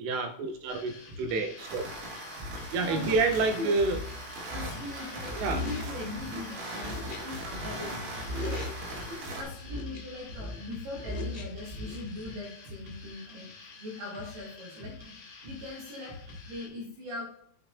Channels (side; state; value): left; late; 18 ms